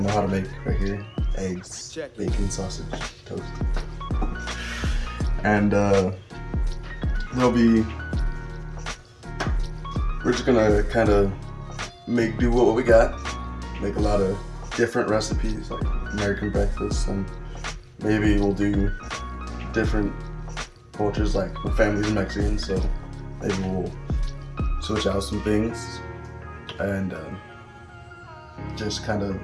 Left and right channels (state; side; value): identical; both; correlation 1.00